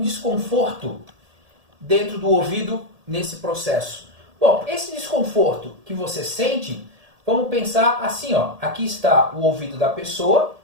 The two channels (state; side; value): late; left; 1.8 ms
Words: dentro do ouvido nesse processo? Bom, esse desconforto que você sente, vamos pensar assim, ó. Aqui está o ouvido da pessoa.